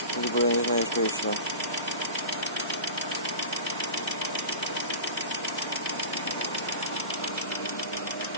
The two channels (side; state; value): both; inverted; correlation -0.33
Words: либо я не знаю, что еще.